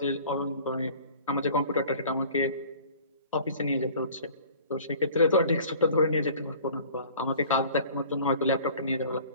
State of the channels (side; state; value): both; inverted; correlation -0.47